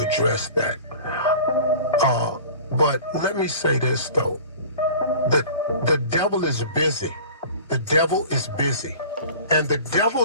that. But let me say this, though. The devil is busy. The devil is busy. And the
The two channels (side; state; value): both; inverted; correlation -0.41